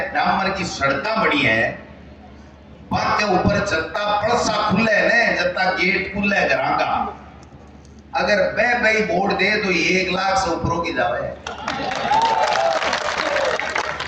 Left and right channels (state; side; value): identical; both; correlation 1.00